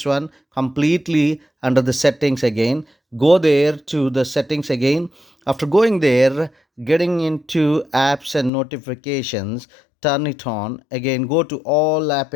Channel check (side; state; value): right; drops out; at 8.5 s